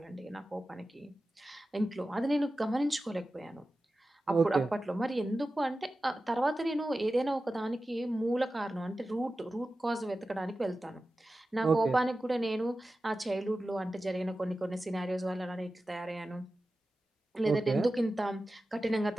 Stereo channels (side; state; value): both; normal; correlation 0.94